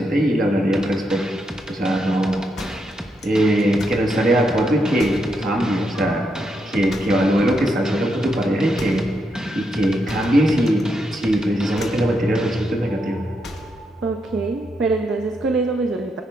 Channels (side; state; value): both; normal; correlation 0.81